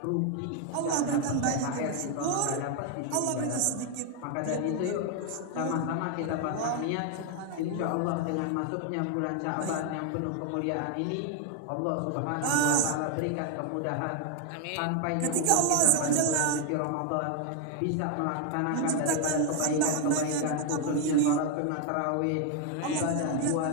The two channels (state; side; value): different; both; correlation 0.00